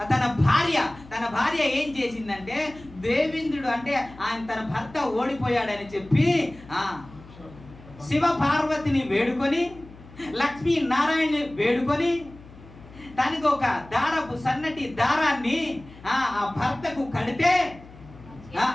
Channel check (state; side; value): noise; left; hum, 20 dB below the sound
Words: తన భార్య ఏం చేసిందంటే, దేవేంద్రుడు అంటే ఆయన తన భర్త ఓడిపోయాడని చెప్పి శివ పార్వతిని వేడుకొని, లక్ష్మీ నారాయణని వేడుకొని, దానికి ఒక సన్నటి దారాన్ని ఆ భర్తకు కడితే